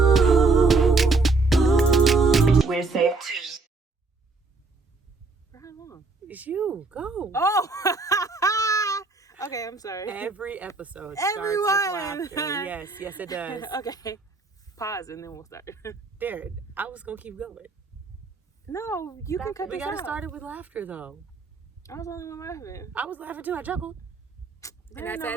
We're safe too. It's you. Go. Oh. Okay, I'm sorry. Every episode Everyone. starts with laughter. Yes, yes, it does. Okay. Pause and then we'll start. There, I was gonna keep going. No, you can cut We this gotta out. start it with laughter, though. I was the only one laughing. I was laughing too. I chuckled. And I I said-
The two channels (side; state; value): left; quieter; 3.7 dB